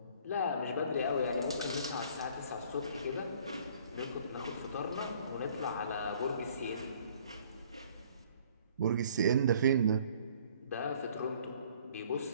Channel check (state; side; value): inverted; both; correlation -0.56